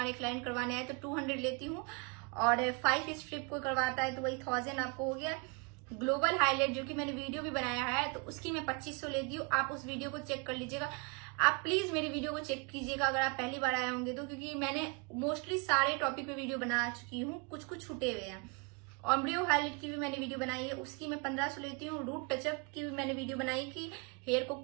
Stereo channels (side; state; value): left; quieter; 31.9 dB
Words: क्लाइंट करवाने आए तो 200 लेती हूँ, और 5 स्ट्रिप को करवाता है तो वही 1000 आपको हो गया। ग्लोबल हाईलाइट जो कि मैंने वीडियो भी बनाया है तो उसकी मैं 2500 लेती हूँ। आप उस वीडियो को चेक कर लीजिएगा। आप प्लीज मेरी वीडियो को चेक कीजिएगा अगर आप पहली बार आए होंगे तो, क्योंकि मैंने मोस्टली सारे टॉपिक पे वीडियो बना चुकी हूँ, कुछ कुछ छूटे हुए हैं। ऑम्ब्रियो हाईलाइट की भी मैंने वीडियो बनाई है, उसकी मैं 1500 लेती हूँ। रूट टचअप की भी मैंने वीडियो बनाई कि हेयर को